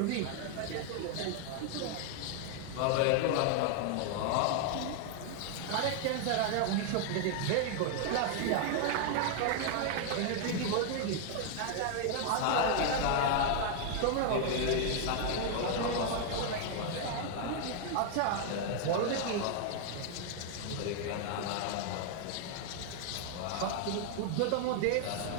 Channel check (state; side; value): different; both; correlation 0.00